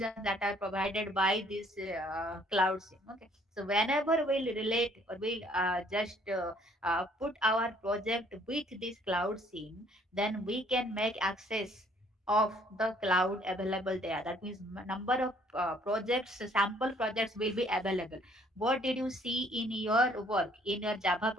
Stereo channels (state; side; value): normal; both; correlation 0.62